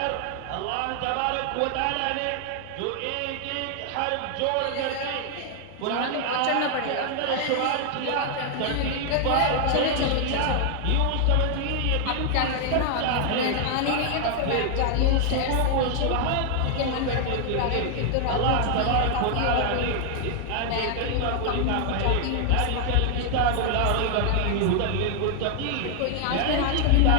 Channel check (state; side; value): different; both; correlation 0.00